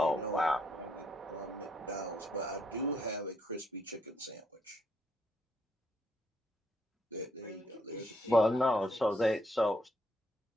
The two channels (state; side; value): normal; both; correlation 0.73